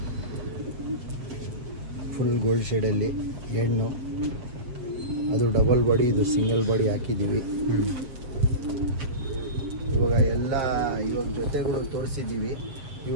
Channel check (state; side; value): late; left; 7.5 ms